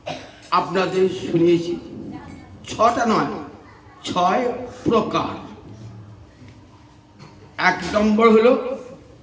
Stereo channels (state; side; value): identical; both; correlation 1.00